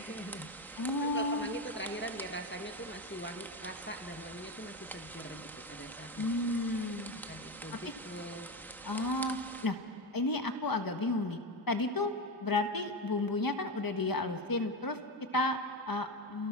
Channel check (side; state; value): both; normal; correlation 0.16